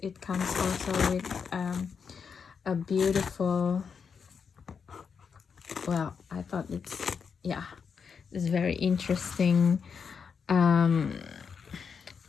it comes also with a beautiful, well, I thought it's, yeah, it's very interesting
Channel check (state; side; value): quieter; right; 6.2 dB